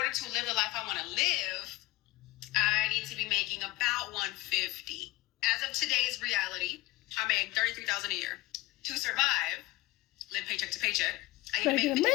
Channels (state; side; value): quieter; right; 19.2 dB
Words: to live the life I want to live, I need to be making about $150,000. As of today's reality, I make $33,000 a year. To survive, live paycheck to paycheck, I need to make